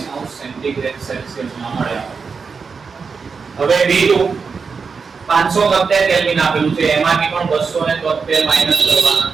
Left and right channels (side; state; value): left; quieter; 5.3 dB